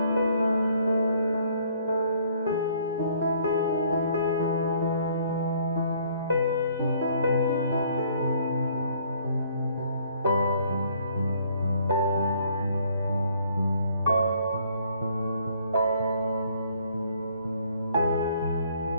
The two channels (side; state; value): both; inverted; correlation -0.62